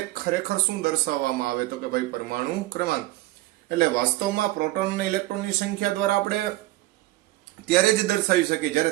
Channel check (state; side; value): quieter; left; 18.4 dB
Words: ખરેખર શું દર્શાવવામાં આવે તો કે ભાઈ પરમાણુ ક્રમાંક. એટલે વાસ્તવમાં પ્રોટોન અને ઇલેક્ટ્રોનની સંખ્યા દ્વારા આપણે ત્યારે જ દર્શાવી શકીએ